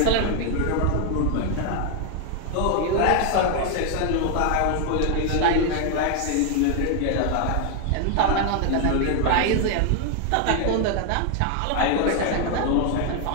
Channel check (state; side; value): different; both; correlation 0.00